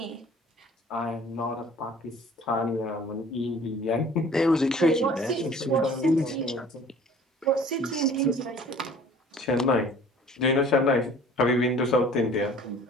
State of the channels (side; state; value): both; normal; correlation 0.49